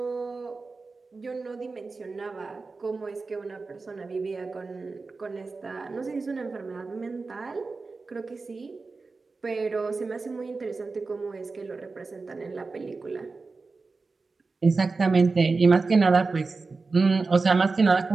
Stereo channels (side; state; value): left; quieter; 4.0 dB